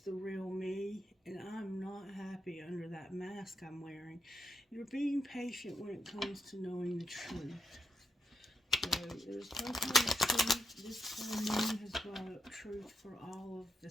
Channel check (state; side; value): normal; both; correlation 0.80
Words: real me, and I'm not happy under that mask I'm wearing. You're being patient when it comes to knowing the truth. So there's some kind of truth. This full moon has brought up truth for all of the